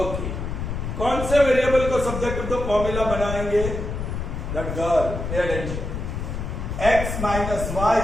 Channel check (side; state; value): left; noise; rumble, 4 dB below the sound